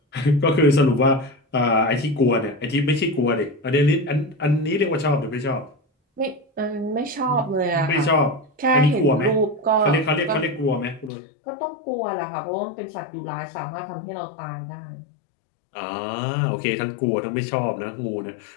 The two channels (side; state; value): right; drops out; at 11.1 s